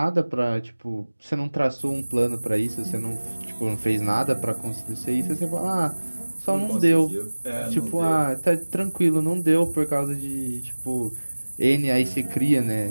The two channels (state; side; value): inverted; both; correlation -1.00